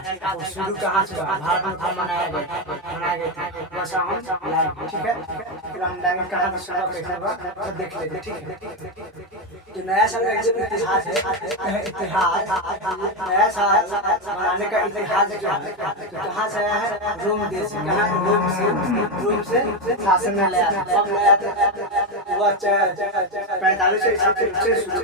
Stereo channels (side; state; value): both; normal; correlation 0.09